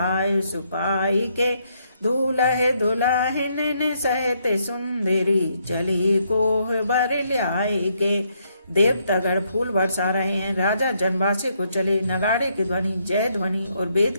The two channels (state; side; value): inverted; both; correlation -0.74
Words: सुपाई के। दूल्हे दुल्हन सहित सुंदरी, चली कोह बर ल्याए के। देवतागण फूल बरसा रहे हैं। राजा जनवासी को चले। नगाड़े की ध्वनि, जय ध्वनि और